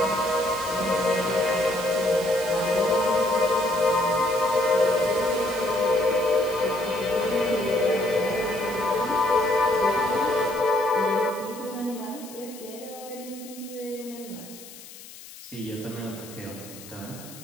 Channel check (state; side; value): noise; left; hiss, 17 dB below the sound